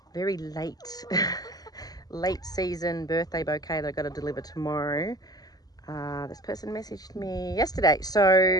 very late late season birthday bouquet that I've got to deliver tomorrow. This person messaged me yesterday,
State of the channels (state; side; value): late; right; 0.18 ms